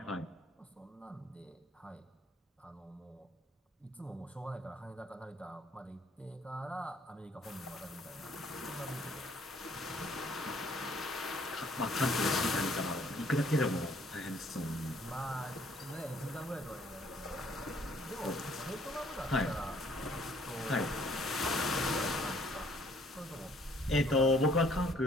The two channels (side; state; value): both; normal; correlation 0.62